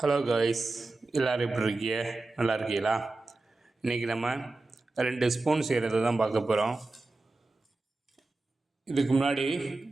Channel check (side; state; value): left; quieter; 3.2 dB